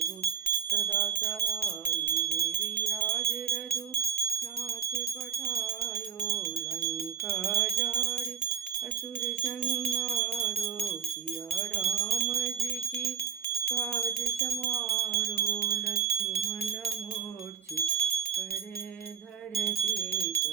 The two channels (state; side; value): quieter; left; 7.1 dB